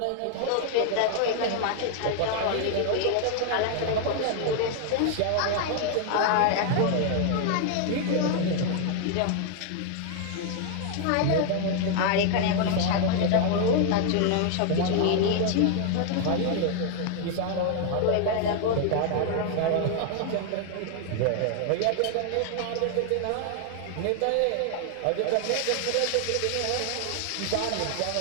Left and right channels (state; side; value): different; both; correlation 0.00